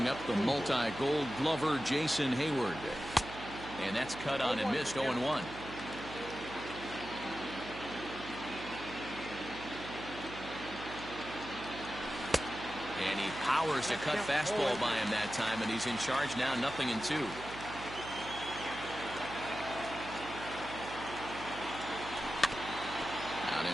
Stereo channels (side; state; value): right; noise; hum, 12 dB below the sound